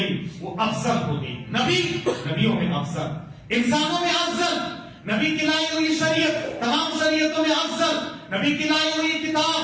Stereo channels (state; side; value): identical; both; correlation 1.00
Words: وہ افضل ہو گئی۔ نبی نبیوں میں افضل، انسانوں میں افضل، نبی کی لائی ہوئی شریعت تمام شریعتوں میں افضل، نبی کی لائی ہوئی